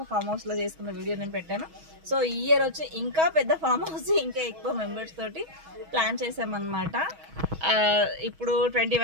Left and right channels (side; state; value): left; late; 6.2 ms